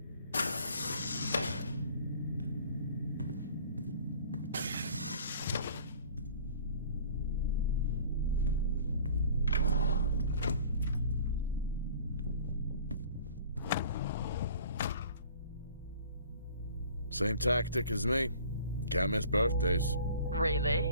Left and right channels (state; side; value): inverted; both; correlation -0.49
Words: Same tactic as me. Can't miss birthdays.